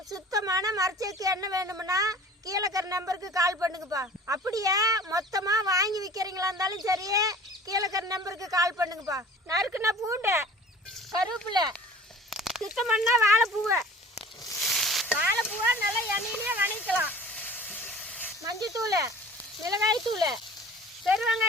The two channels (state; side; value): normal; both; correlation 0.44